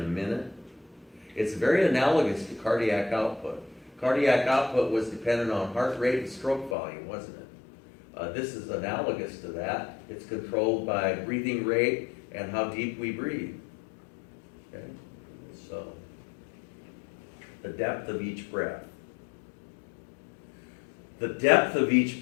a minute. It's very analogous to cardiac output. Cardiac output was dependent on heart rate and stroke volume, wasn't it? This is analogous to that. It's controlled by breathing rate and how deep we breathe. Okay? So, the depth of each breath. The depth of each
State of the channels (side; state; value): right; drops out; at 6.8 s